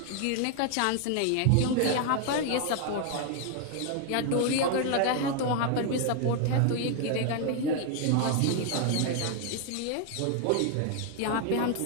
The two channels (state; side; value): different; both; correlation 0.00